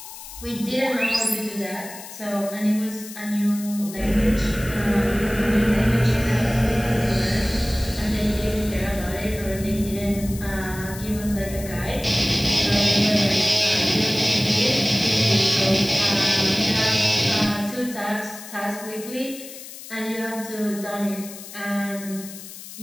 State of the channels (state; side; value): noise; left; hiss, 14 dB below the sound